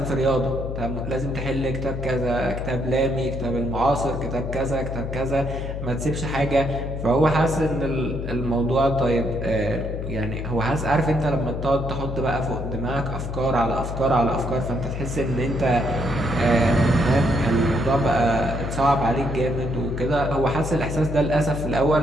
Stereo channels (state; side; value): noise; left; hum, 5 dB below the sound